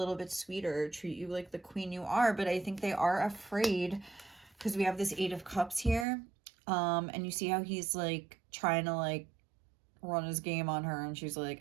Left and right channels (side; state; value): left; drops out; at 6.1 s